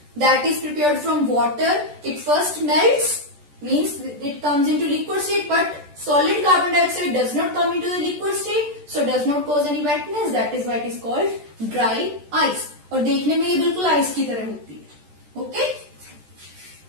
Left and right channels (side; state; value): left; late; 14 ms